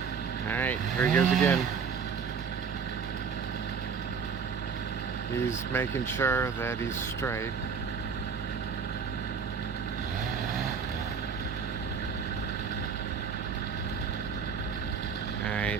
Alright, here he goes again. He's making sure that he's straight.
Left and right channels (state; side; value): quieter; left; 6.2 dB